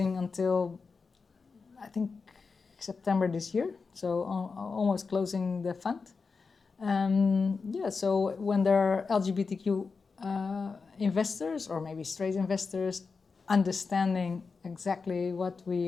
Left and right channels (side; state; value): right; quieter; 4.7 dB